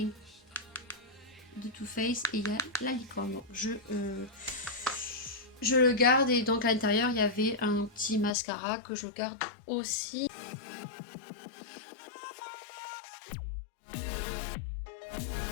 de Too Faced et il y a la licorne. Donc, je le garde et donc à l'intérieur il y avait un petit mascara que je garde aussi.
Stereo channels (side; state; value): right; drops out; at 8.3 s